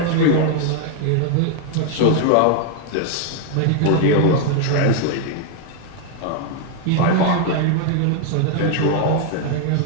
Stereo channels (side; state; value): both; different; correlation 0.00